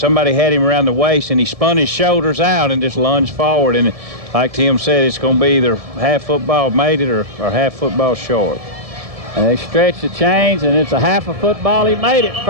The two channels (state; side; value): late; left; 1.7 ms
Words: had him around the waist, and he spun his shoulders out and just lunged forward. And like Tim said, it's going to be either half football made it or half football short. And they stretch the chains, and it's a half a football. He made it.